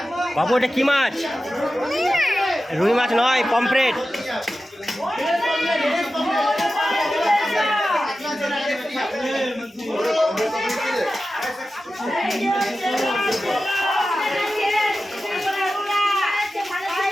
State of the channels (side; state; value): both; normal; correlation 0.93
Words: বাবু এটা কি মাছ? রুই মাছ নয়, পমফ্রেট।